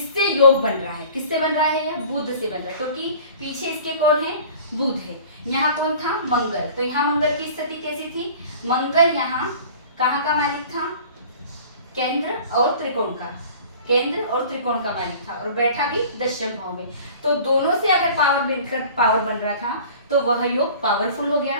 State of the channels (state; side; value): inverted; both; correlation -0.45